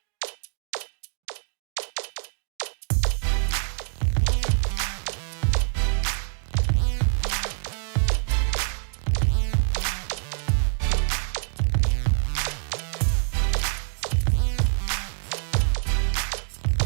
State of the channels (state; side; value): silent; left; digital silence